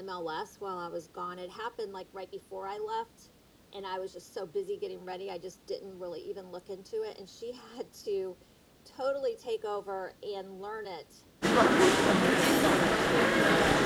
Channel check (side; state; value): both; identical; correlation 1.00